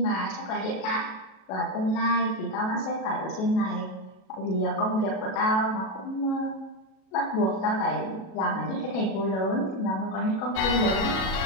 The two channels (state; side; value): late; right; 37 ms